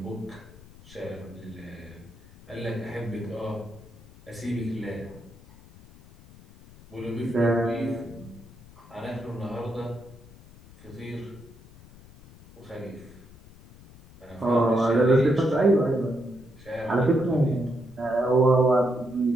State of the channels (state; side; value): noise; left; rumble, 22 dB below the sound